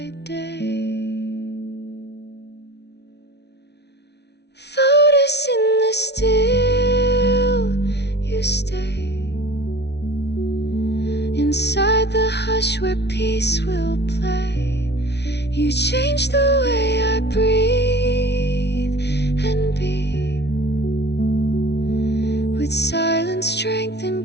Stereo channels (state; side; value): late; right; 0.50 ms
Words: day. Lotus in the still, you stay inside the hush where peace will play. You change the way I breathe and be, with silence, strength,